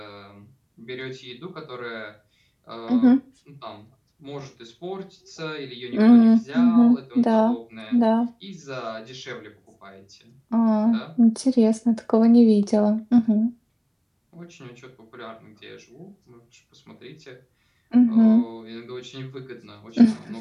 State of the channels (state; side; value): identical; both; correlation 1.00